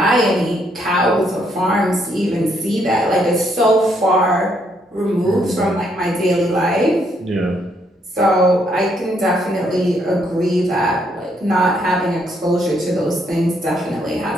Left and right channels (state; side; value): normal; both; correlation 0.72